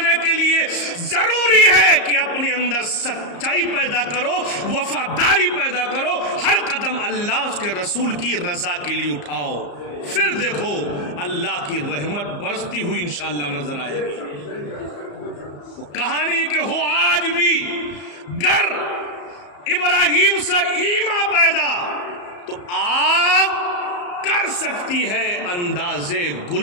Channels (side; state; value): right; late; 34 ms